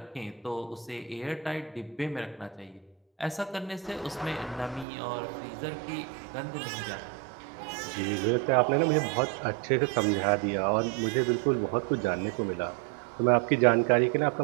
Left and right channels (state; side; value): drops out; left; at 4.9 s